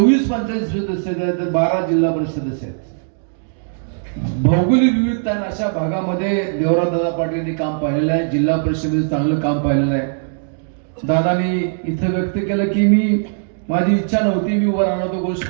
पंचायत सदस्य आहेत, 12 जिल्हा परिषद सदस्य आहेत. भौगोलिक विविधता अशा भागामध्ये देवराजदादा पाटील काम पाहिलेलं आहे. जिल्हा परिषदेमध्ये चांगलं काम पाहिलेलं आहे. दादानी इथं व्यक्त केलं की माझी इच्छा नव्हती, मी उभा राहणार, तो गोष्ट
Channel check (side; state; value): left; silent; digital silence